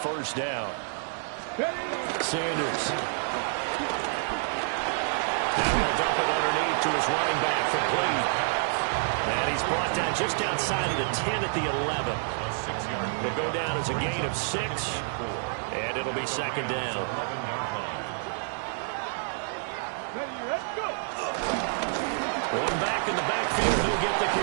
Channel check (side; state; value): left; silent; 59 dB below the other